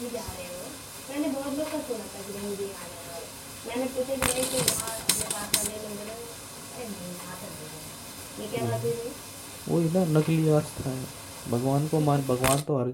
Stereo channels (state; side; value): identical; both; correlation 1.00